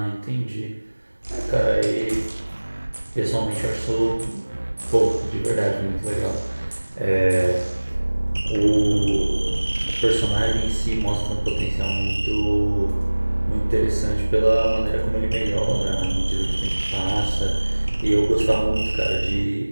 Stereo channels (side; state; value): both; inverted; correlation -1.00